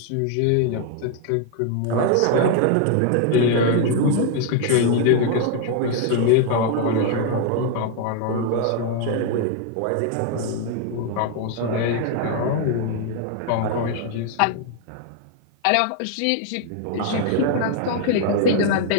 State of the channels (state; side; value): different; both; correlation 0.00